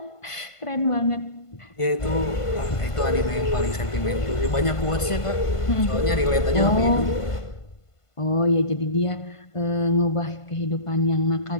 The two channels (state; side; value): late; right; 1.5 ms